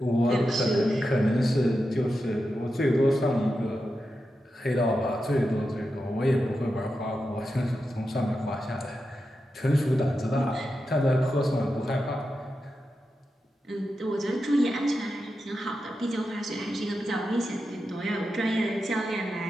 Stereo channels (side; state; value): both; normal; correlation 0.89